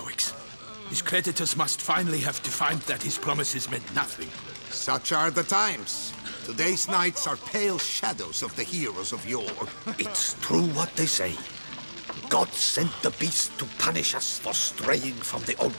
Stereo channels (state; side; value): inverted; both; correlation -1.00